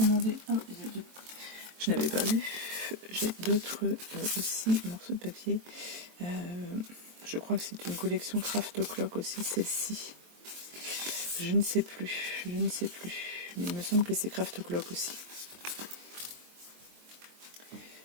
Ah, je n'avais pas vu. J'ai d'autres aussi morceaux de papier. Je crois que c'est une collection Craft O'Clock aussi, celle-ci. Je ne sais plus, mais il me semble que c'est Craft O'Clock aussi.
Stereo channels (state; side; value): late; left; 23 ms